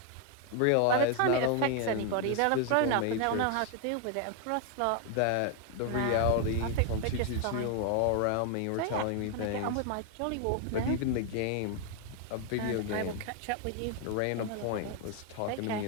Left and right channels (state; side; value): different; both; correlation 0.00